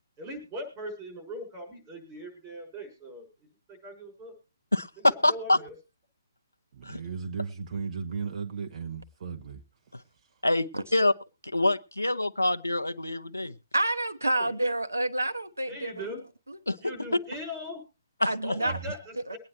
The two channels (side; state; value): both; inverted; correlation -0.90